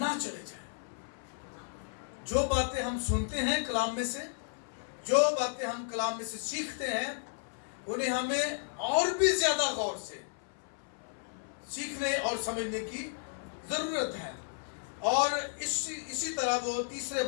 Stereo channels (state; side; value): silent; right; 56 dB below the other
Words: چلے جائیں۔ جو باتیں ہم سنتے ہیں کلام میں سے، جو باتیں ہم کلام میں سے سیکھتے ہیں، انہیں ہمیں اور بھی زیادہ غور سے سیکھنے اور سمجھنے کی ضرورت ہے۔ اور اسی طرح وہ تیسرے